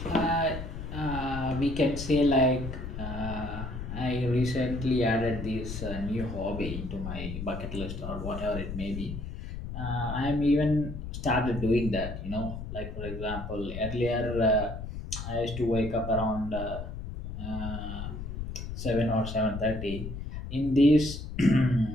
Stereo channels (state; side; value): noise; left; rumble, 7 dB below the sound